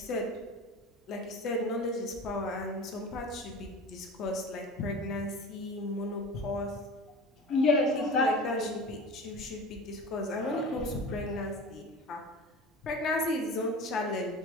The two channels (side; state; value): both; normal; correlation 0.35